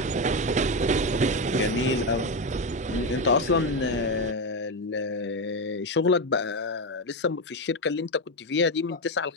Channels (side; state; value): both; normal; correlation 0.11